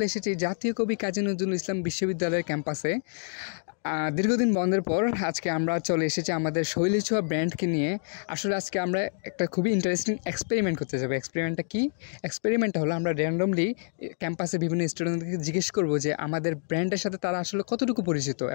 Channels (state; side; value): silent; right; digital silence